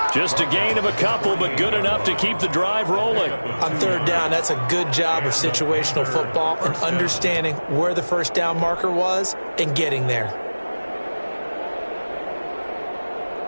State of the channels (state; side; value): inverted; both; correlation -1.00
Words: Just a gain of a couple, but good enough to keep the drive rolling. On third down, that's a good job of situational football and understanding where the first down marker was and getting there.